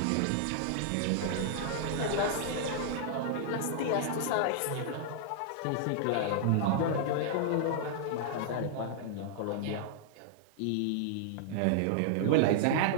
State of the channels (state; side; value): different; both; correlation -0.01